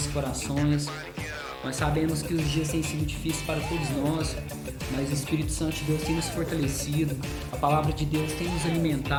corações. Nós sabemos que os dias têm sido difíceis para todos nós, mas o Espírito Santo de Deus tem nos fortalecido, a palavra de Deus tem nos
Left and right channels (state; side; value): identical; both; correlation 1.00